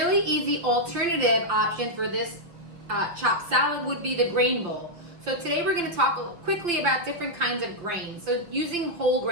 easy alternative option for this chopped salad would be the grain bowl. So today we're going to talk quickly about different kinds of grains. So using whole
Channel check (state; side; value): late; left; 6.0 ms